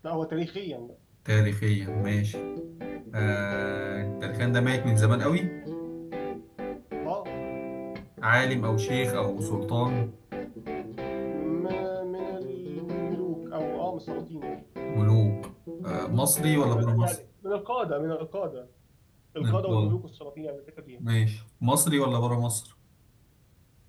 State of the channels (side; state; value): both; identical; correlation 1.00